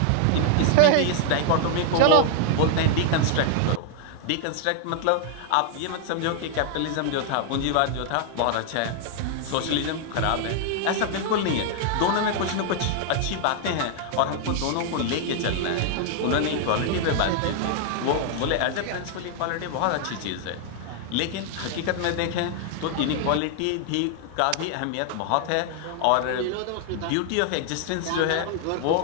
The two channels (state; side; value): different; both; correlation 0.00